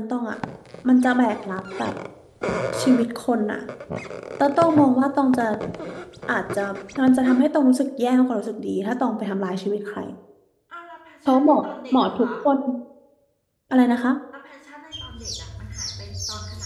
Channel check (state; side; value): identical; both; correlation 1.00